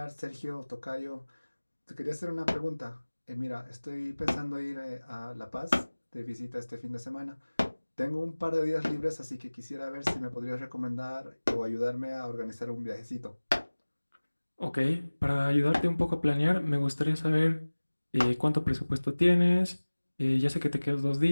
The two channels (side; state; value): both; inverted; correlation -1.00